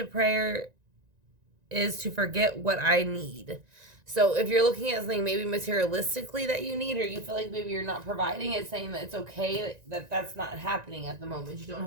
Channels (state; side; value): late; left; 1.9 ms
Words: prayer is to forget what I need. So if you're looking at something maybe materialistically that you need, or you feel like maybe you're not providing, it's saying that it's okay that that's not happening at the moment. You don't